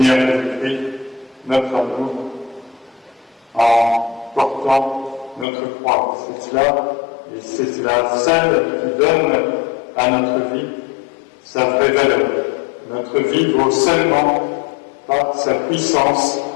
Jésus-Christ notre amour en portant notre croix. C'est cela, et c'est cela seule qui donne à notre vie sa vraie valeur. Notre vie vaut seulement par sa puissance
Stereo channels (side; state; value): right; drops out; at 5.5 s